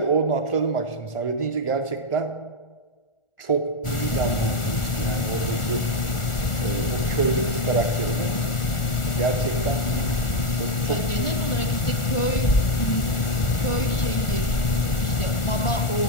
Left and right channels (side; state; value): right; late; 1.4 ms